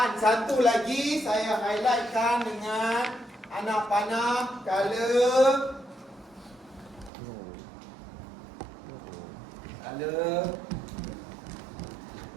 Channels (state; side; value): drops out; left; at 7.1 s